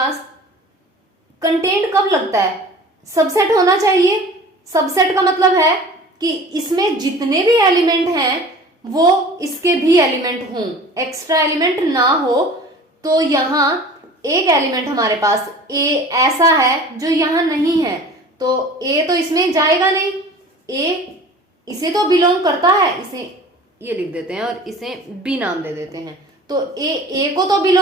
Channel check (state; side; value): normal; both; correlation 0.42